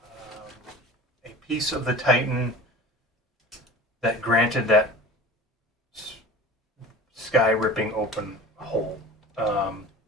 piece of the Titan that granted that sky ripping open hole,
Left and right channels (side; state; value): both; normal; correlation 0.38